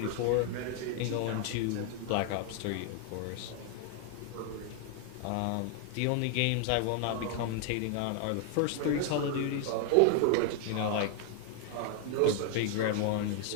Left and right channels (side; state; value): both; different; correlation 0.00